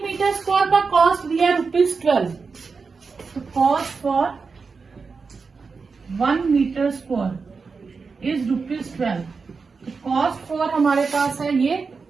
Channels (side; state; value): left; quieter; 4.8 dB